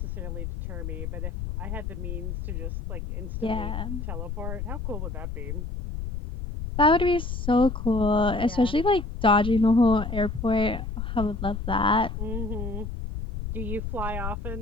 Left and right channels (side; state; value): left; noise; rumble, 5 dB below the sound